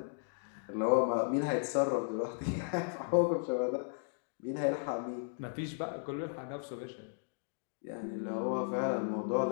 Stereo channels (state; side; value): silent; right; digital silence